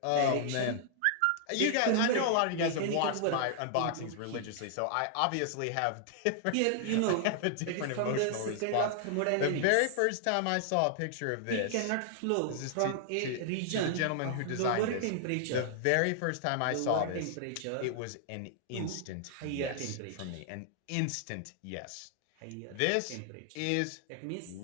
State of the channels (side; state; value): both; different; correlation -0.01